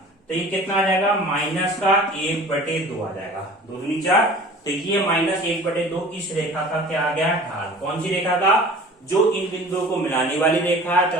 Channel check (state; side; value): normal; both; correlation 0.43